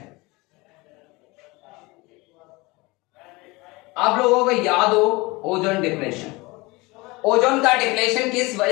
आप लोगों को याद हो ओजोन डिप्लेशन. ओजोन का डिप्लेशन किस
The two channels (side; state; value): right; quieter; 23.6 dB